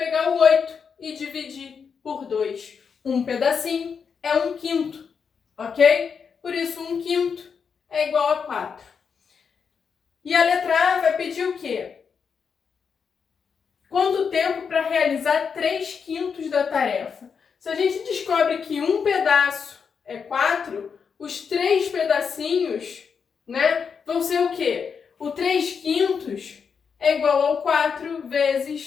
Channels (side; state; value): right; quieter; 6.2 dB